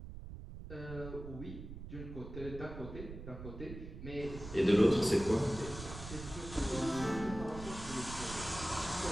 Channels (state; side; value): noise; right; rumble, 11 dB below the sound